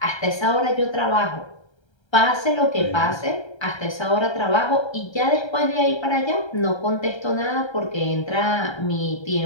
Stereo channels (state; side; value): late; right; 1.3 ms